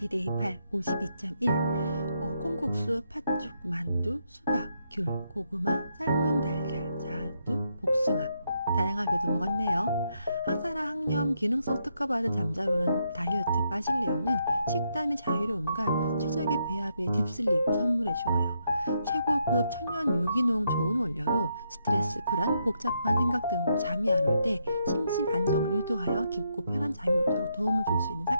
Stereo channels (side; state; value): both; inverted; correlation -0.78